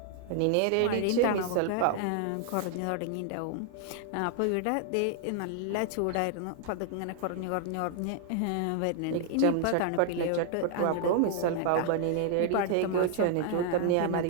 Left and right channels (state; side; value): different; both; correlation -0.01